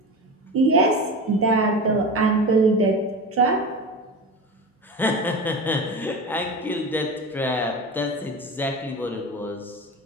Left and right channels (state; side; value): normal; both; correlation 0.28